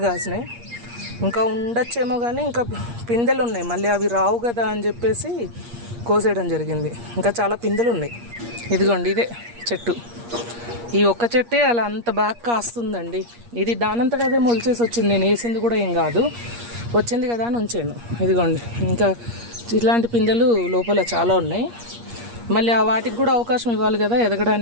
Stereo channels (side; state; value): left; late; 8.5 ms